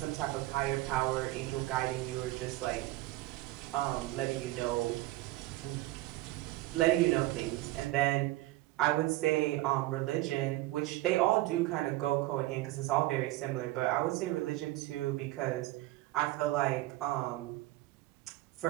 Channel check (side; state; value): left; quieter; 17.8 dB